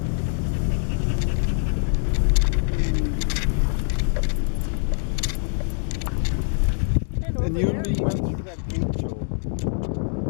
And you and me went through that gate, Joe.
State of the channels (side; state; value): right; silent; 63 dB below the other